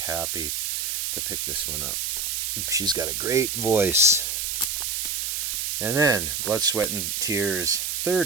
to pick this one up. She's got a great voice. And then Blood, Sweat, and Tears'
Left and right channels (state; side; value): noise; right; hiss, 1 dB below the sound